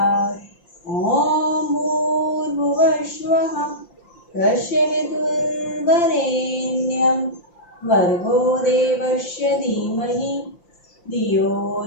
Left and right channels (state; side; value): late; right; 5.8 ms